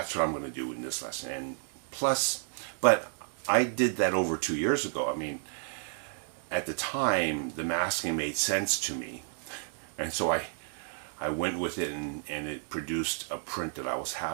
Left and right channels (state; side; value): silent; left; digital silence